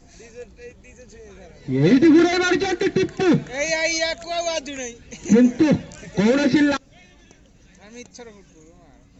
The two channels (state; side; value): identical; both; correlation 1.00